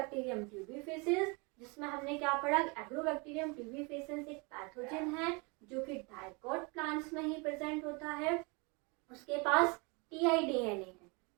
ट्यूबिफिकेंस, जिसमें हमने क्या पढ़ा, एग्रोबैक्टीरियम ट्यूबिफिकेंस एक पैथोजन है जो कि डाइकोट प्लांट्स में ही प्रेजेंट होता है। उसके पास टीआईडीएनए है।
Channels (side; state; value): left; quieter; 30.0 dB